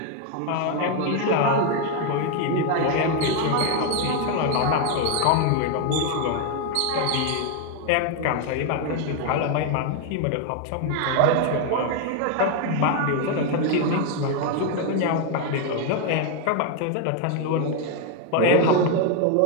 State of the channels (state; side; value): different; both; correlation 0.01